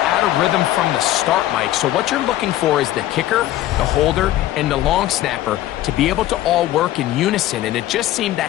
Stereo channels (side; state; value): right; quieter; 14.3 dB